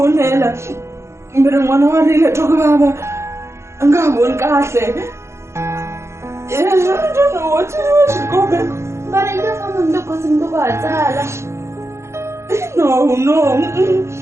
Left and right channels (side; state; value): left; late; 0.13 ms